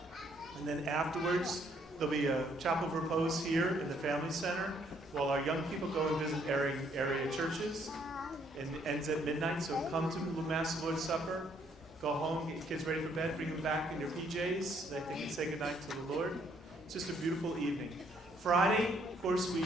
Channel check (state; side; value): normal; both; correlation 0.67